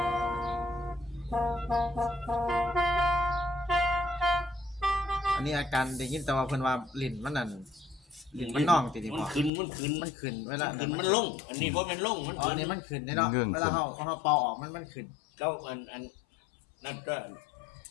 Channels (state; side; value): drops out; right; at 9.5 s